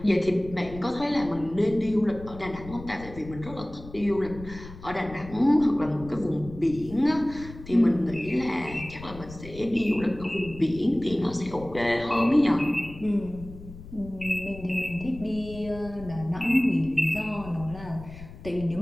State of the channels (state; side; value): noise; left; rumble, 15 dB below the sound